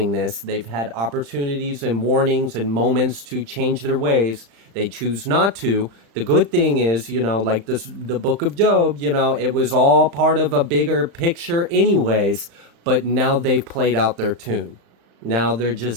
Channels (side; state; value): left; late; 35 ms